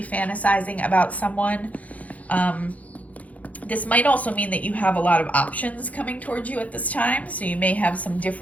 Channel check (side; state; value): right; late; 0.070 ms